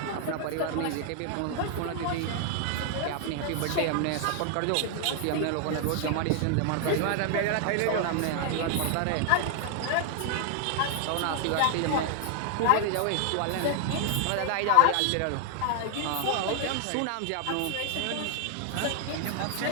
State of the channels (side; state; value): both; different; correlation 0.00